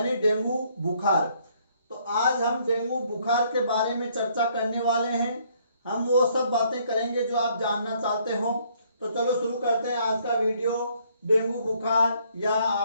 डेंगू बुखार। तो आज हम डेंगू बुखार के बारे में चर्चा करने वाले हैं। हम वो सब बातें करेंगे जो आप जानना चाहते हो। तो चलो शुरू करते हैं आज का वीडियो। डेंगू बुखार या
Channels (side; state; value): both; inverted; correlation -0.66